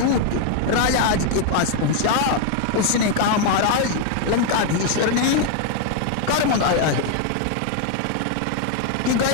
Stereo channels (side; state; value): both; different; correlation 0.00